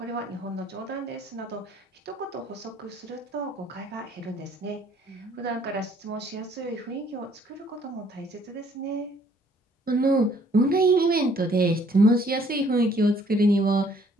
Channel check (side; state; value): both; normal; correlation 0.62